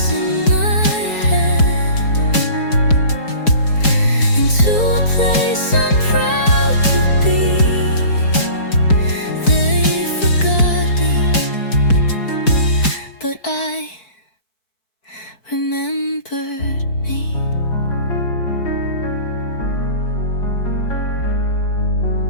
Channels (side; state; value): right; late; 4.6 ms